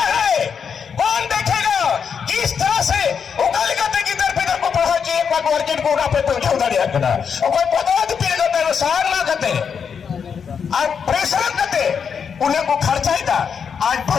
है? कौन देखेगा? किस तरह से उगल गते की तरफ इधर को पढ़ा कि एक बार मार्केट को पे पहुंचा उधर करना और कोई पदार्थ पी गए सार ना कहते आज प्रेशर कहते उन्हें को खर्चा ही था। आज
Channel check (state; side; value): quieter; right; 6.7 dB